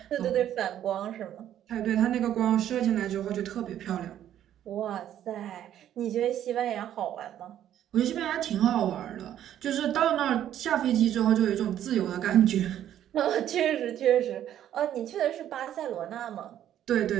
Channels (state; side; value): quieter; left; 11.1 dB